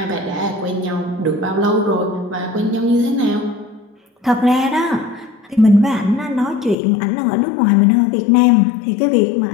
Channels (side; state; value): right; drops out; at 6.8 s